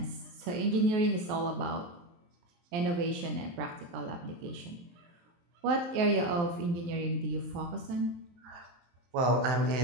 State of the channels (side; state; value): left; late; 23 ms